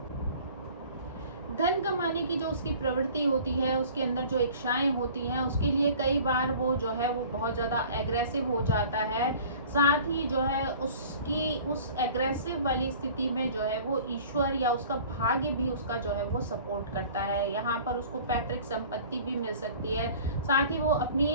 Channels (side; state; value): both; inverted; correlation -0.47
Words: धन कमाने की जो उसकी प्रवृत्ति होती है, उसके अंदर जो इच्छाएं होती हैं, उसके लिए कई बार वो जो है वो बहुत ज़्यादा एग्रेसिव हो जाता है। साथ ही जो है उसकी उस एग्रेसिव वाली स्थिति में जो है वो ईश्वर या उसका भाग्य भी उसका जो है वो सपोर्ट करता है। यहाँ पर उसको पैतृक संपत्ति भी मिल सकती है। साथ ही वो